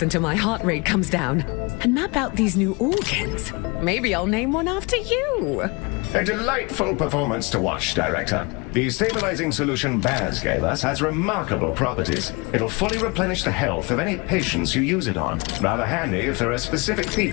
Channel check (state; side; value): quieter; right; 28.3 dB